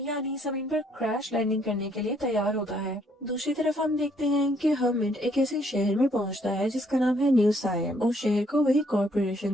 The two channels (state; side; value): normal; both; correlation 0.68